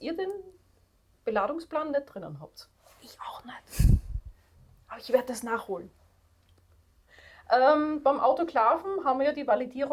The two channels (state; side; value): identical; both; correlation 1.00